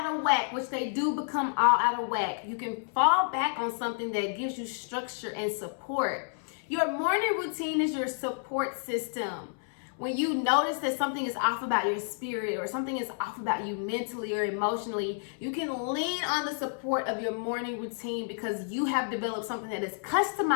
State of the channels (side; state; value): right; silent; 58 dB below the other